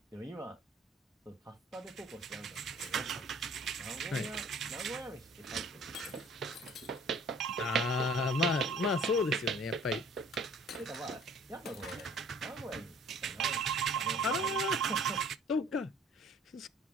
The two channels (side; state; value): both; normal; correlation 0.52